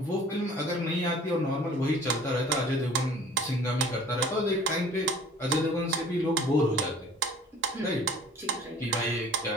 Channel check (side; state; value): both; normal; correlation 0.48